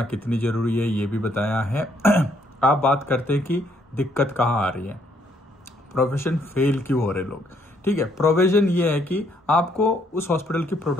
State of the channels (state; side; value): normal; both; correlation 0.69